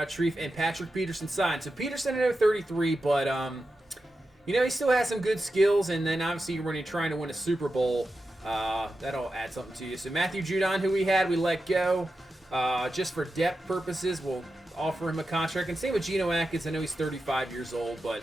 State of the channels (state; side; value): normal; both; correlation 0.90